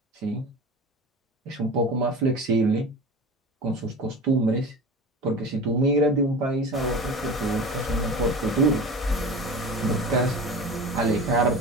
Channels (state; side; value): normal; both; correlation 0.33